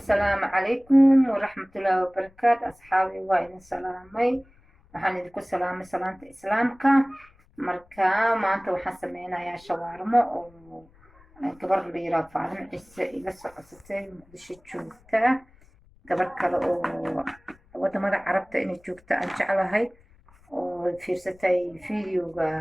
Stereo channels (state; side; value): noise; left; rumble, 28 dB below the sound